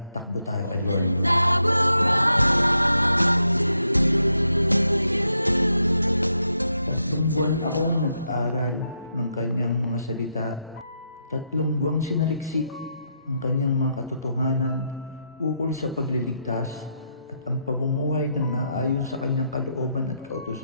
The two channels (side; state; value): both; inverted; correlation -0.81